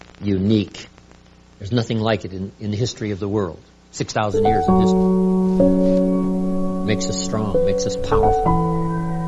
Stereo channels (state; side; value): identical; both; correlation 1.00